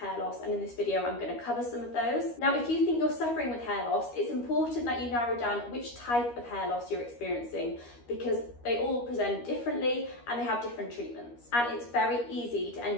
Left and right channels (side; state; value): right; late; 13 ms